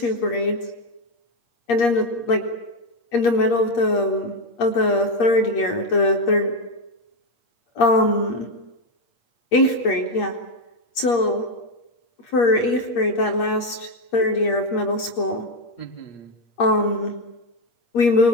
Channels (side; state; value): right; late; 8.5 ms